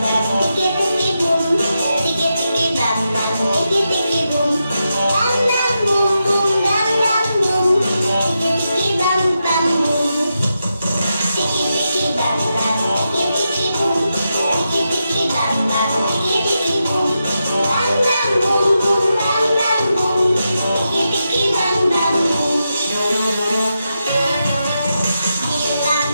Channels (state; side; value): inverted; both; correlation -0.87